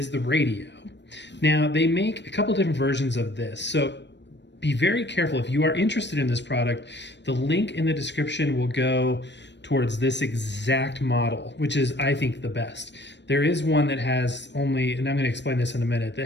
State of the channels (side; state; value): right; late; 0.51 ms